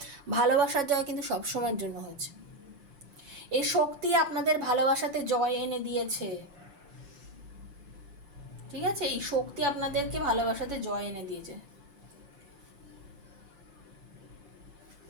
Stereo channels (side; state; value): left; late; 5.7 ms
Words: ভালোবাসার জয় কিন্তু সবসময়ের জন্য হয়েছে। এই শক্তি আপনাদের ভালোবাসাতে জয় এনে দিয়েছে, ঠিক আছে? এই শক্তি আপনাদেরকে ভালোবাসাতে জয় এনে দিয়েছে।